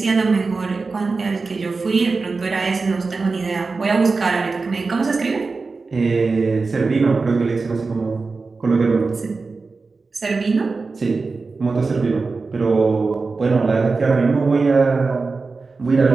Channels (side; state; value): left; quieter; 4.1 dB